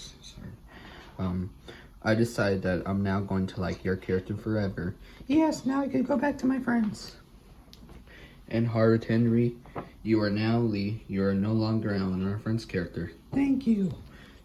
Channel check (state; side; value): identical; both; correlation 1.00